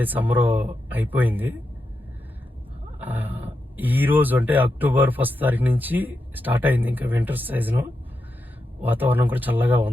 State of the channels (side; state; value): both; normal; correlation 0.87